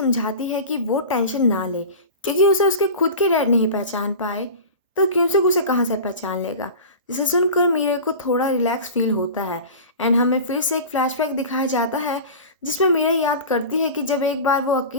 है कि वो टेंशन ना ले, क्योंकि उसे उसके खुद के डैड नहीं पहचान पाए तो क्यूनसुक उसे कहाँ से पहचान लेगा। जिसे सुनकर मीरे को थोड़ा रिलैक्स फील होता है एंड हमें फिर से एक फ्लैशबैक दिखाया जाता है, जिसमें मीरा याद करती है कि जब एक बार वो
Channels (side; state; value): both; inverted; correlation -0.33